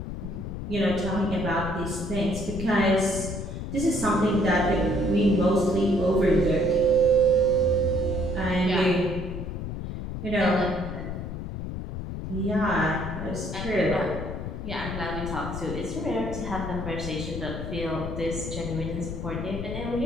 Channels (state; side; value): noise; left; rumble, 6 dB below the sound